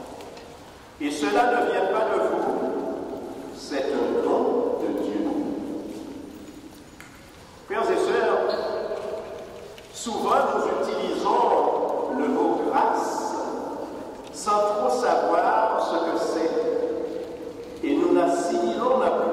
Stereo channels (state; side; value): identical; both; correlation 1.00